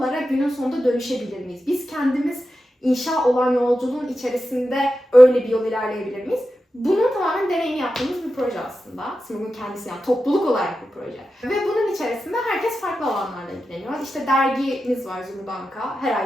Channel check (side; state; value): both; normal; correlation 0.91